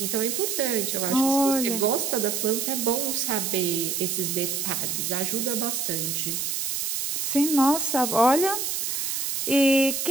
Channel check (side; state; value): right; noise; hiss, 1 dB below the sound